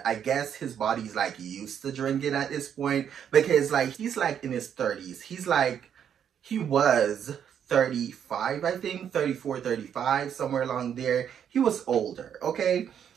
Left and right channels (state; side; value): quieter; left; 8.7 dB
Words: I guess his body's like used to drinking at this point because like he's like in his 30s. He was 35, I think, 34, 35, somewhere along there. He was older, okay?